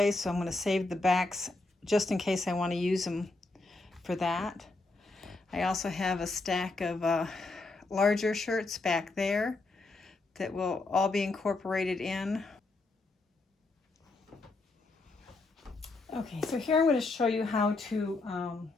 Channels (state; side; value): quieter; right; 3.3 dB